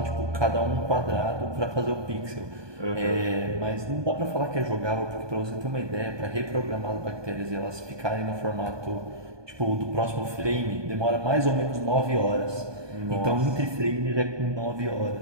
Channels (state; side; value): late; left; 1.2 ms